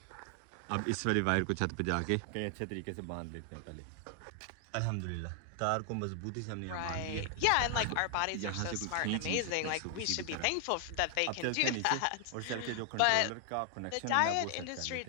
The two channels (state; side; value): different; both; correlation 0.00